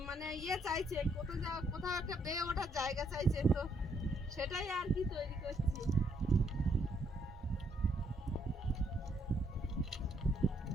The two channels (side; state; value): both; normal; correlation 0.72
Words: মানে চাইছে, কোথাও একটা বেয়ে ওঠার জায়গা চাইছে, তো সেটাই আর কি তৈরি করছি।